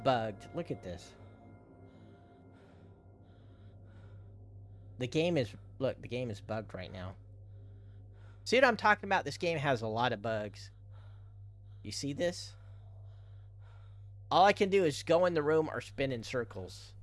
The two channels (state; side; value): identical; both; correlation 1.00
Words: Look at this. The game is bugged right now. See what I'm talking about? This game has a lot of bugs. You see this? All I can do is go in the room or spin in circles.